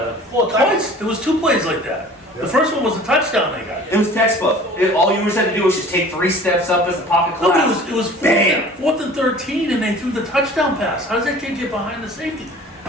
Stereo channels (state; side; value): normal; both; correlation 0.46